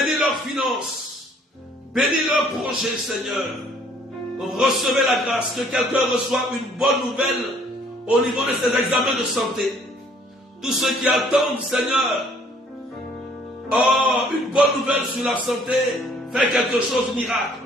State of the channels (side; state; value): both; normal; correlation 0.60